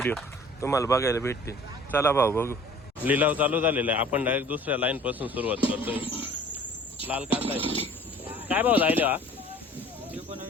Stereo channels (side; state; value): both; normal; correlation 0.49